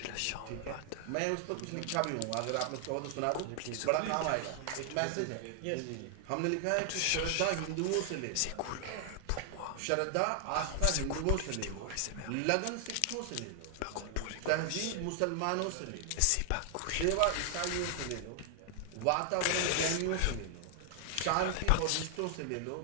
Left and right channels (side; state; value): both; different; correlation 0.00